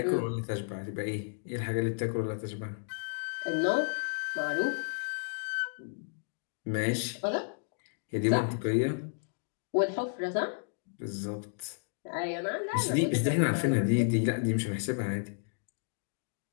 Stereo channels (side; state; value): right; silent; digital silence